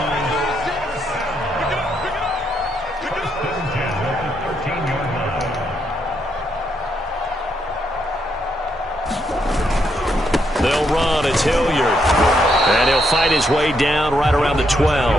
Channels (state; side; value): normal; both; correlation 0.77